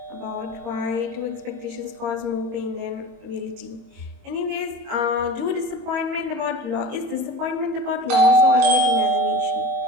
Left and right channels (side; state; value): left; late; 21 ms